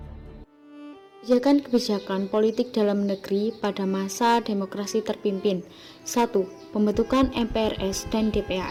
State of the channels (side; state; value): both; identical; correlation 1.00